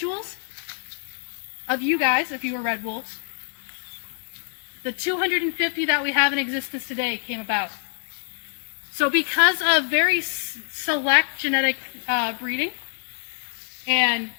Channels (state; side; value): silent; right; 62 dB below the other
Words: of you guys, if you were red wolves, the 250 that we have in existence today came about. So because of very select genetic breeding and